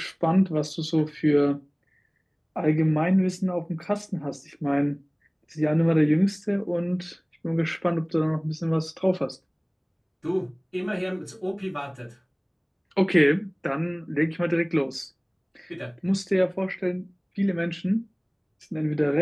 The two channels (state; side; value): identical; both; correlation 1.00